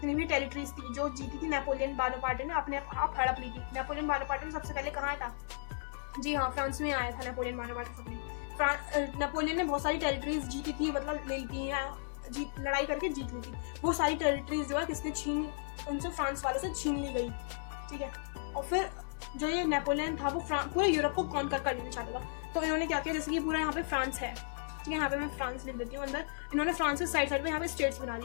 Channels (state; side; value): silent; right; digital silence